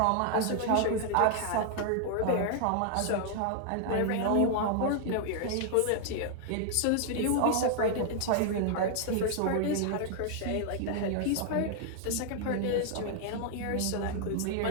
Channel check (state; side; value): different; both; correlation 0.00